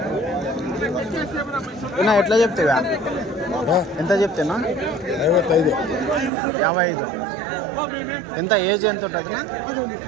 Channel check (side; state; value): left; drops out; at 6.3 s